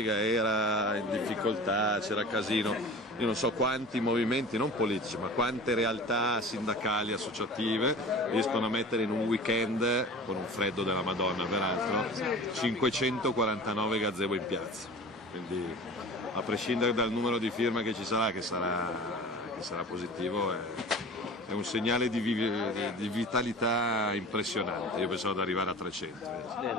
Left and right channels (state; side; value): normal; both; correlation 0.38